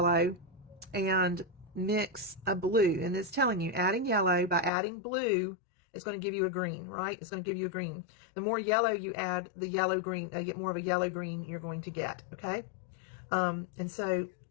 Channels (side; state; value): right; drops out; at 4.7 s